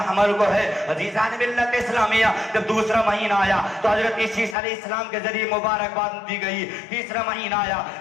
हमल को है अजीजान मिल्लत इस्लामिया। जब दूसरा महीना आया तो हजरत ईसा अलैहिस्सलाम के जरिए मुबारकबाद दी गई। तीसरा महीना आया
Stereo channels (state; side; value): drops out; right; at 4.5 s